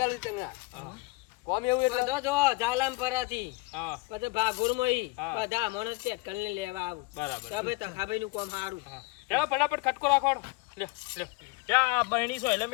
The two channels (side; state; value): right; quieter; 24.8 dB